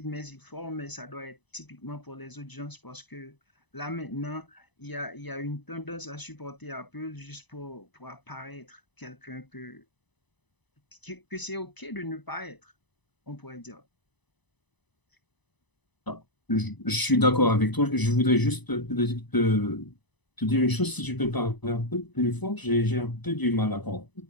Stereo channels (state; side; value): late; right; 1.0 ms